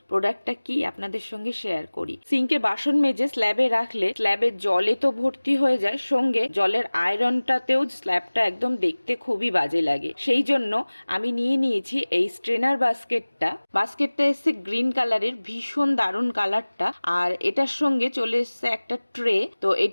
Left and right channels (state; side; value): inverted; both; correlation -1.00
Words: প্রোডাক্টটা কি আপনাদের সঙ্গে শেয়ার করি। সিঙ্কে বাসন মেজে স্ল্যাবে রাখলে স্ল্যাবের জলে তো ভর্তি হয়ে যায়, সঙ্গে জলের আয়রনটাতেও স্ল্যাবটা একদম দেখতে খুবই বাজে লাগে। সেই জন্য আমি নিয়ে নিয়েছি এই স্ট্রেনার বাস্কেটটা এসছে গ্রিন কালারের, ভীষণ দারুণ কালারটা। আর এটার সঙ্গে চলে এসছে একটা ট্রে। তো এই